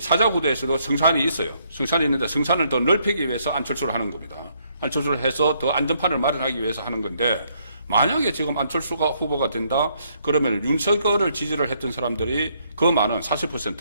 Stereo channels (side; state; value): both; inverted; correlation -0.71